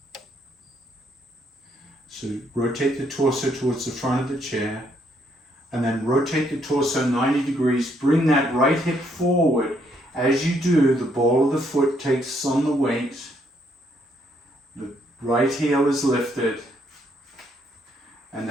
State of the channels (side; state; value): both; normal; correlation 0.71